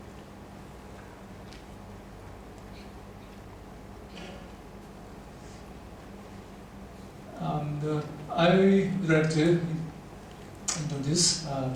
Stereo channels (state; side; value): identical; both; correlation 1.00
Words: And I would like to introduce